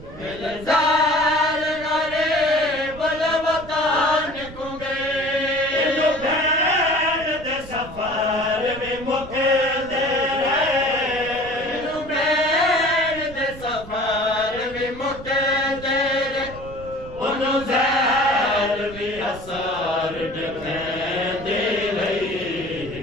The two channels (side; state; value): right; noise; rumble, 15 dB below the sound